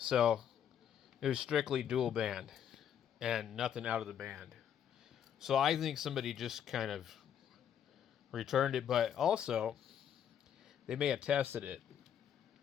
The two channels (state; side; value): quieter; right; 9.1 dB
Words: it was strictly dual band and nothing out of the band. So I think somebody just kind of returned it, but also they may have tested it